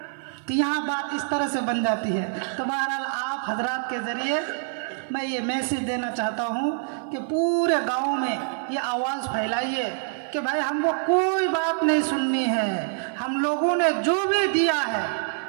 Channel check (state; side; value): silent; left; 56 dB below the other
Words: तो यहाँ बात इस तरह से बन जाती है। तो बहरहाल आप हजरात के ज़रिए मैं ये मैसेज देना चाहता हूँ कि पूरे गांव में ये आवाज़ फैलाइए कि भाई हमको कोई बात नहीं सुननी है। हम लोगों ने जो भी दिया है,